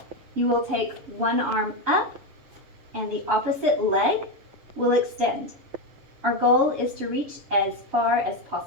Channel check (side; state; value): left; late; 7.0 ms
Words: You will take one arm up and the opposite leg will extend. Our goal is to reach as far as